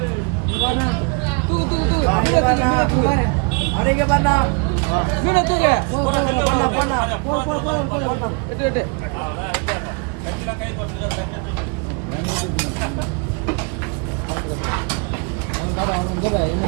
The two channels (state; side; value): quieter; left; 32.7 dB